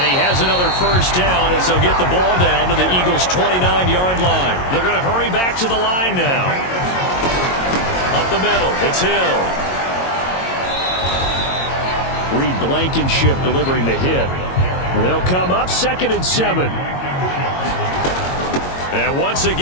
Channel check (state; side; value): late; right; 22 ms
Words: he has another first down as they'll get the ball down to the Eagles' 29-yard line. They're going to hurry back to the line now. Up the middle, it's Hill. Reed Blankenship delivering the hit. And they'll come up 2nd and 7. And once